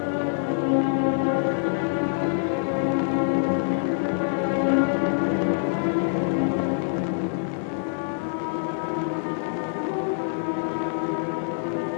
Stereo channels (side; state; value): right; silent; 62 dB below the other